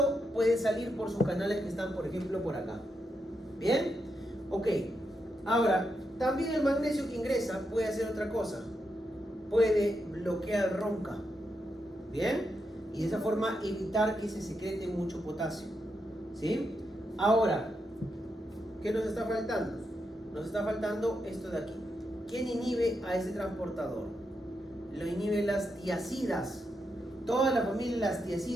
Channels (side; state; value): both; normal; correlation 0.84